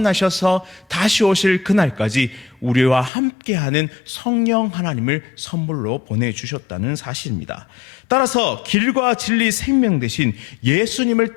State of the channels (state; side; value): drops out; right; at 3.1 s